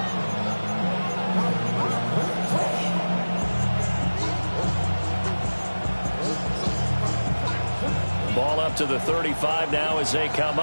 Ball up to the 35 now as they come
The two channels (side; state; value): both; inverted; correlation -1.00